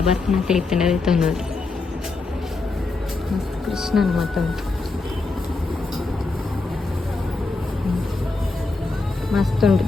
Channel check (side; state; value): right; quieter; 3.6 dB